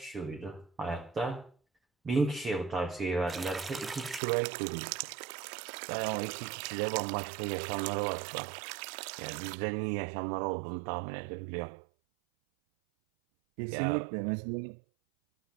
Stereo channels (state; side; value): drops out; left; at 4.2 s